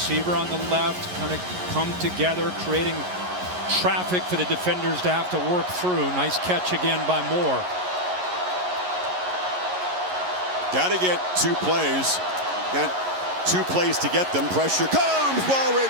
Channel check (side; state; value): left; late; 11 ms